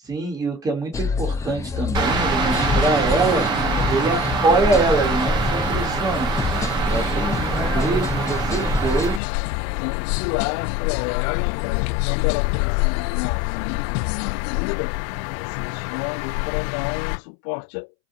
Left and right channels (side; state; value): right; drops out; at 9.2 s